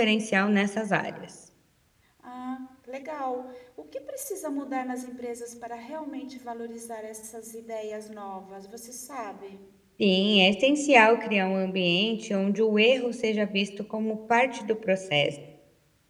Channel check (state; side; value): identical; both; correlation 1.00